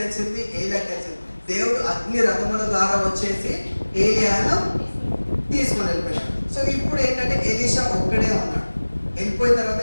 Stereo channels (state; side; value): inverted; both; correlation -1.00